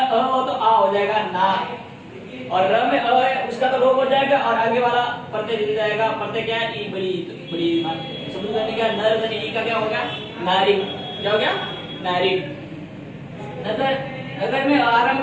हो तो आ हो जाएगा ना, और र में अ है उसका तो लोप हो जाएगा और आगे वाला प्रत्यय जुड़ जाएगा। प्रत्यय क्या है? ई बड़ी शब्द का क्या? नर धन ई का क्या हो गया? नारी। क्या हो गया? नारी। नगर में आरंभ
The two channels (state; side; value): identical; both; correlation 1.00